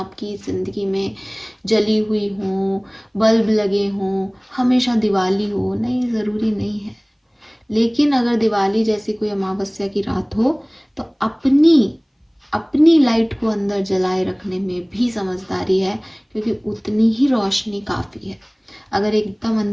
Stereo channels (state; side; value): identical; both; correlation 1.00